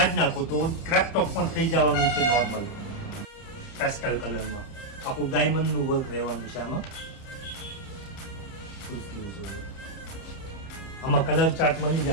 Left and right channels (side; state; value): right; late; 30 ms